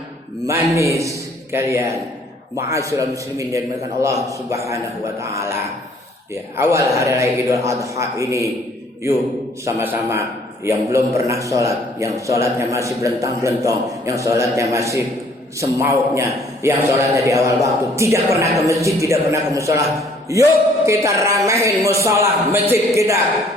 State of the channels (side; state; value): both; normal; correlation 0.60